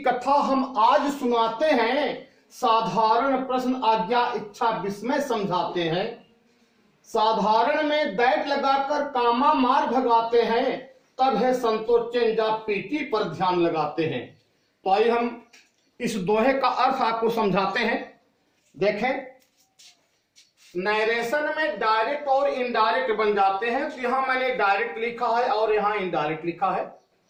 कथा हम आज सुनाते हैं। साधारण प्रश्न आज्ञा इच्छा विस्मय समझाते हैं। साधारण में दैट लगाकर कामा मार भगाते हैं, तब है संतोष चेंजा पीटी पर ध्यान लगाते हैं। तो आइए हम इस दोहे का अर्थ आपको समझाते हैं। देखें, नरेशन में डायरेक्ट और इनडायरेक्ट बन जाते हैं। तो यहां मैंने डायरेक्ट लिखा है और यहां इनडायरेक्ट लिखा है।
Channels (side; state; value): both; identical; correlation 1.00